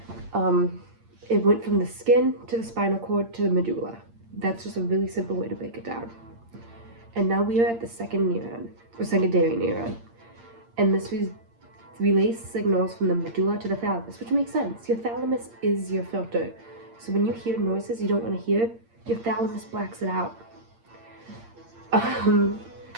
It went from the skin to the spinal cord to the medulla. That's just a really simple way to break it down. And now we are at the second neuron, or secondary neuron. And this relays signals from the medulla to the thalamus, which makes sense. Your thalamus is your filter. So when you hear noises you don't want to hear, your thalamus blacks it out. And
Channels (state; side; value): late; left; 8.7 ms